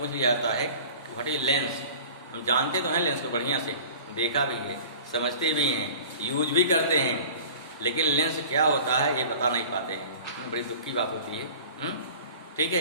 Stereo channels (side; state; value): both; inverted; correlation -0.43